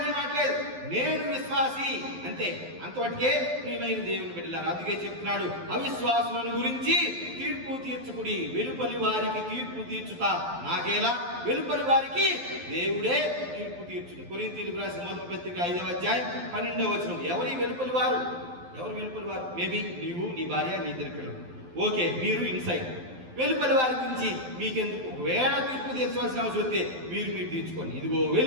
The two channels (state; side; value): late; left; 12 ms